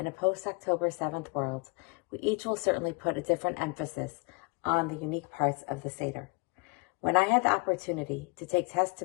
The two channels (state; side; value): quieter; right; 30.2 dB